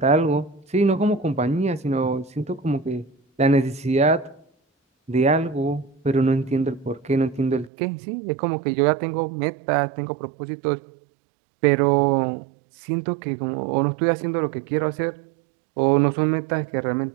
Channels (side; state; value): left; drops out; at 7.7 s